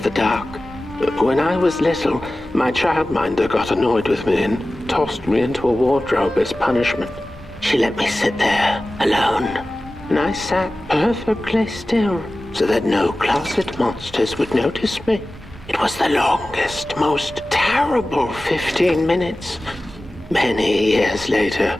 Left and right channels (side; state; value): both; normal; correlation 0.96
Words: the dark. When I was little, my childminder got annoyed with me and tossed me into a wardrobe as punishment. She let me sit there, alone, and I sat perfectly still so that no closet monsters would notice me. It was the longest, most terrible 15 minutes. Many years later,